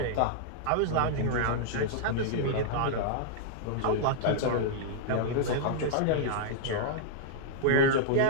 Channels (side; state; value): both; different; correlation -0.02